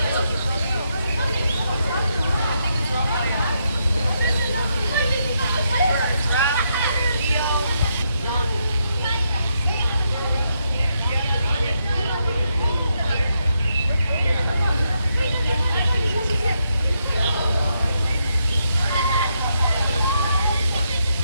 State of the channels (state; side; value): inverted; both; correlation -0.79